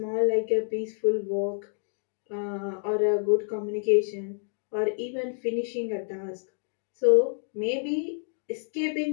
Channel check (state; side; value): silent; right; digital silence